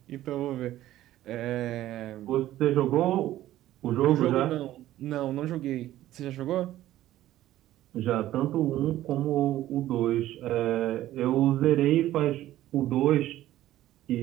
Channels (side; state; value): left; quieter; 14.1 dB